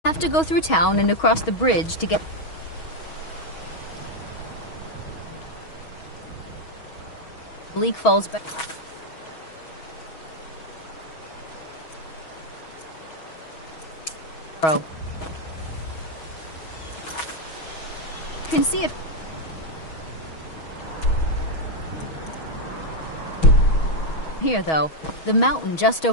Have to go through town and across the bridge to get... Bleak Falls Barrow. Can see it. Here, though, the mountain just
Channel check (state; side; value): late; right; 6.3 ms